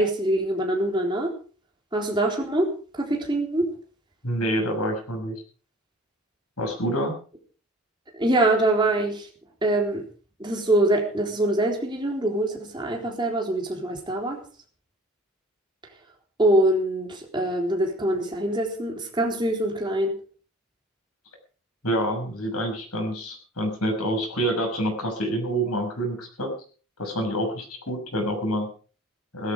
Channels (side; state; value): both; normal; correlation 0.47